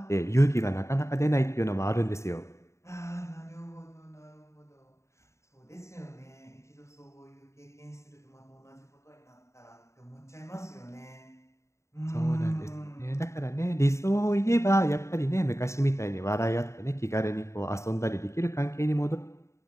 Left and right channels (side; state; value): right; late; 0.14 ms